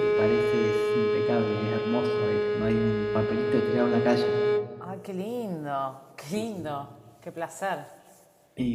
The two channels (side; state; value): both; identical; correlation 1.00